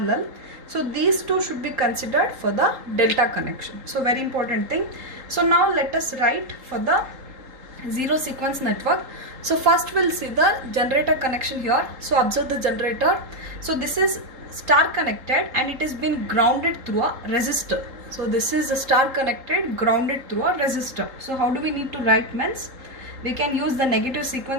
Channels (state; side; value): late; left; 3.8 ms